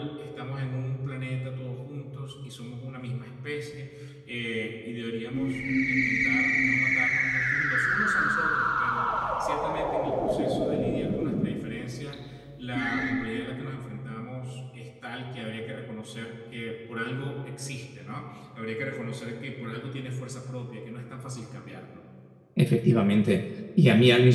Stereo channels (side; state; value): both; identical; correlation 1.00